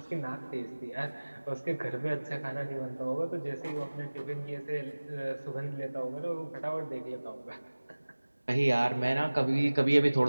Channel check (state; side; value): inverted; both; correlation -1.00